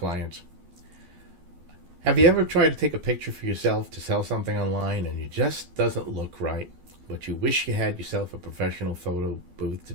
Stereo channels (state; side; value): late; left; 12 ms